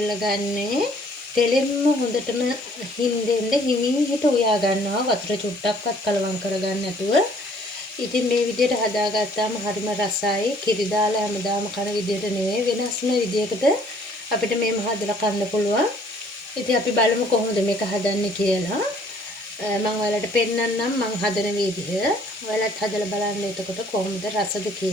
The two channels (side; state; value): both; normal; correlation 0.59